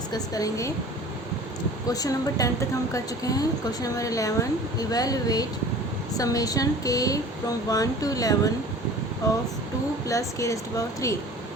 करेंगे। क्वेश्चन नंबर 10 तक हम कर चुके हैं। क्वेश्चन नंबर 11, इवेलुएट समेशन के फ्रॉम 1 to 11 ऑफ 2 + k⁻3।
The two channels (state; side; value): normal; both; correlation 0.43